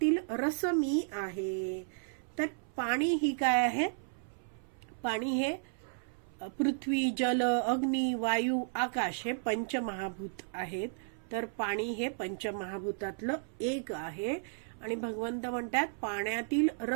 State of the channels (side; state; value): left; silent; 55 dB below the other